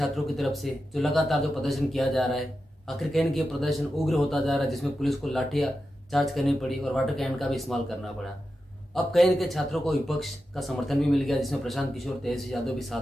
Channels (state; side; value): normal; both; correlation 0.90